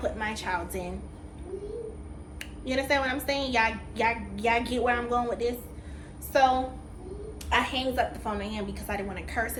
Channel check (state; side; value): identical; both; correlation 1.00